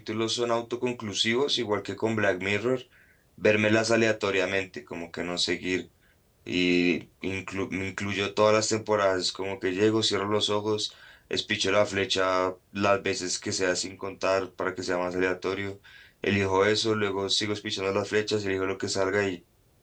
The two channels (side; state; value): both; identical; correlation 1.00